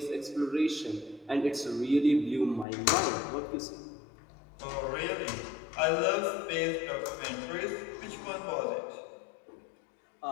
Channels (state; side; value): drops out; right; at 2.7 s